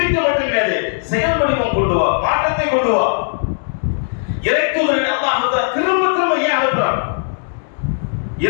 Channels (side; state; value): right; silent; digital silence